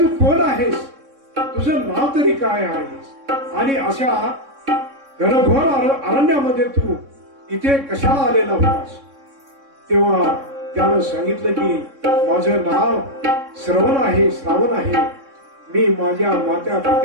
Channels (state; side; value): late; left; 3.6 ms